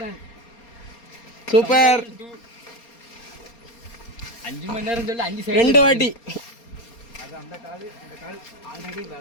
சூப்பர். 5 மணி நேரம் சொல்லி 5 சைடு 2 வாட்டி. அது அந்த கால் ஆல்ரெடி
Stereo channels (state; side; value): late; right; 4.3 ms